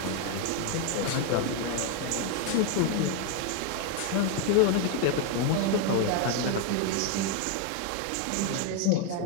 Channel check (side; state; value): both; different; correlation 0.01